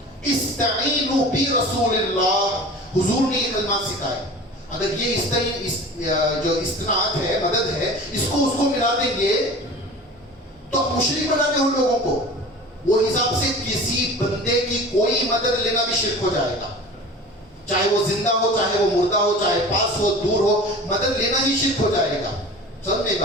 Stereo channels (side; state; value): both; normal; correlation 0.38